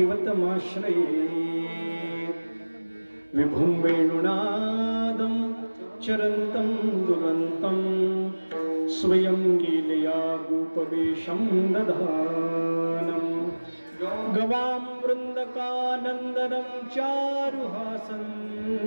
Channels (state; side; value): inverted; both; correlation -1.00